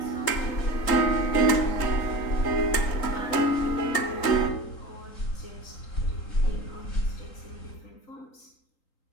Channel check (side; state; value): right; late; 3.8 ms